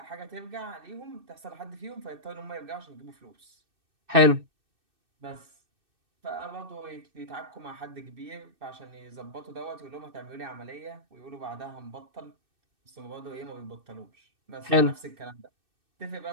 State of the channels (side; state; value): left; late; 2.6 ms